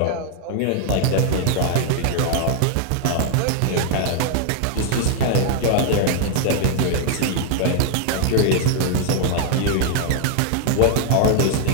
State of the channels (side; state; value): both; different; correlation 0.00